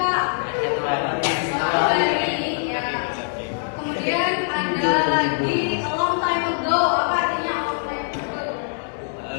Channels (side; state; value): right; silent; 64 dB below the other